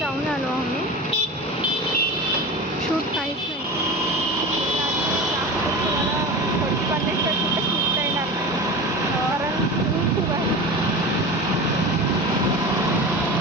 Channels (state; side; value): normal; both; correlation 0.30